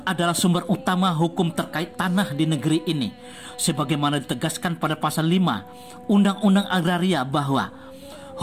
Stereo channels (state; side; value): identical; both; correlation 1.00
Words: adalah sumber utama hukum terkait tanah di negeri ini, sebagaimana ditegaskan pada pasal 5 Undang-Undang Agraria bahwa